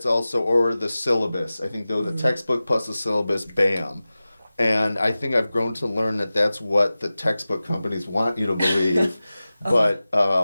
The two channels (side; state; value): both; inverted; correlation -0.96